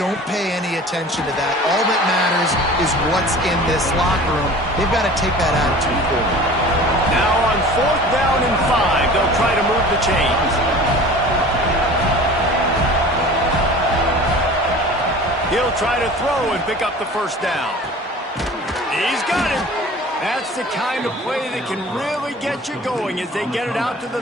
pay any attention to that. All that matters is what's in this locker room. They've got to take that attitude forward. Now on 4th down and 5, they'll try to move the chains. He'll try to throw and pick up the first down. He's got it. That's the kind of play that can really get you going as they get it out to the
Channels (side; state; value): both; normal; correlation 0.42